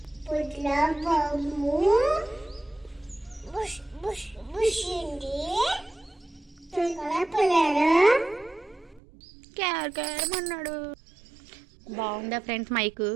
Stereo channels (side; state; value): left; drops out; at 9.0 s